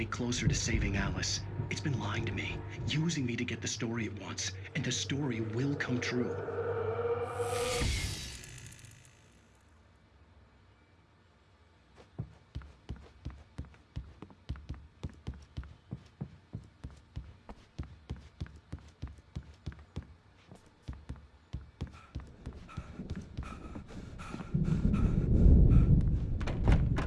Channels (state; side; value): identical; both; correlation 1.00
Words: closer to saving Alice. It's been lying to me, using me to get the story it wants, and the story will come true.